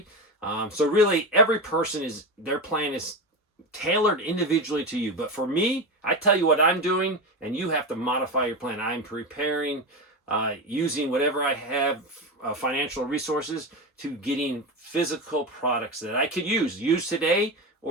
So really, every person their plan is tailored individually to you. But for me, I tell you what I'm doing, and you have to modify your plan. I'm preparing, using whatever I have, financial resources, to getting physical products that I could use today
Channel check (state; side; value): normal; both; correlation 0.19